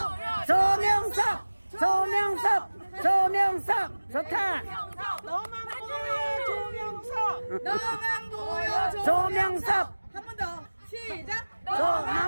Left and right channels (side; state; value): both; inverted; correlation -1.00